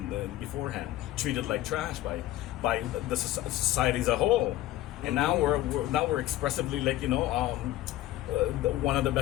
beforehand, treated like trash by the society as a whole, and now we're expressively like one of the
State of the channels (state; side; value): quieter; right; 14.9 dB